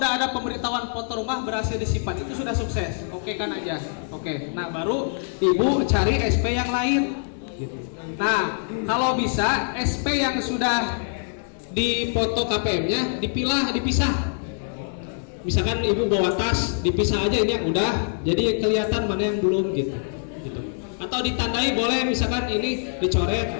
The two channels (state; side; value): silent; right; 59 dB below the other